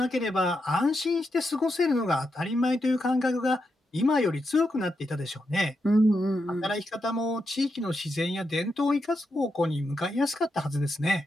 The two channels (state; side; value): normal; both; correlation 0.85